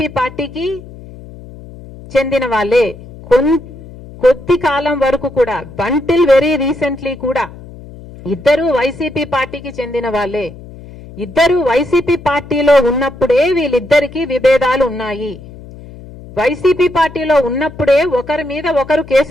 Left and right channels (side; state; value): left; noise; hum, 17 dB below the sound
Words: పార్టీకి చెందిన వాళ్ళే. కొద్ది కాలం వరకు కూడా, బంటిల్ వెరీ రీసెంట్లీ కూడా ఇద్దరు వైసీపీ పార్టీకి చెందిన వాళ్ళే. ఇద్దరు వైసీపీ పార్టీలో ఉన్నప్పుడే వీళ్ళిద్దరికీ విభేదాలు ఉన్నాయి. వైసీపీ పార్టీలో ఉన్నప్పుడే ఒకరి మీద ఒకరు